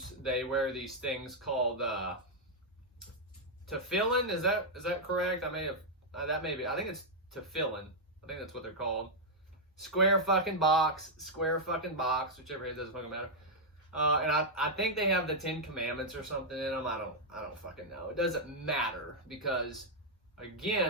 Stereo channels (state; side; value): normal; both; correlation -0.03